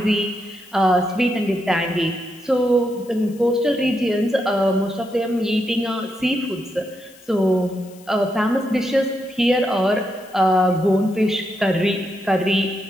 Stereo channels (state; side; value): noise; left; hiss, 25 dB below the sound